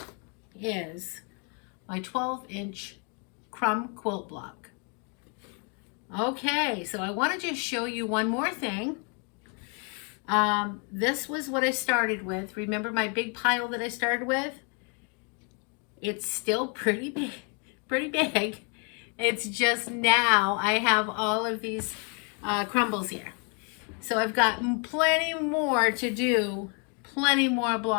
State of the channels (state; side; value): quieter; right; 37.2 dB